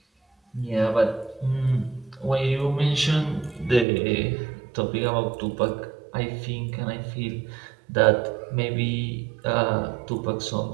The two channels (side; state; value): left; drops out; at 3.9 s